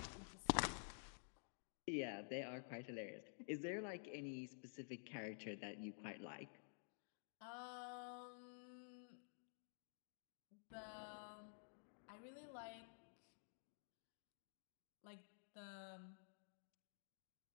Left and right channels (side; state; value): right; silent; digital silence